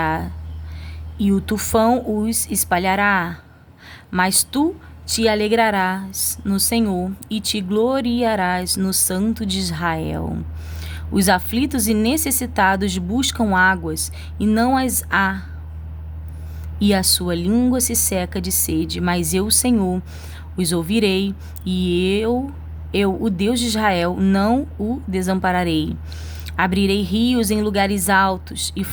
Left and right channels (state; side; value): identical; both; correlation 1.00